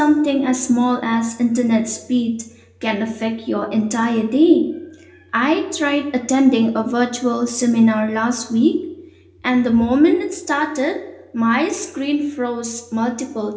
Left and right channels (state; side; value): identical; both; correlation 1.00